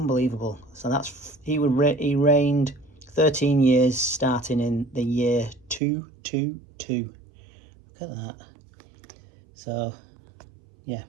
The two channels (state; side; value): drops out; left; at 5.8 s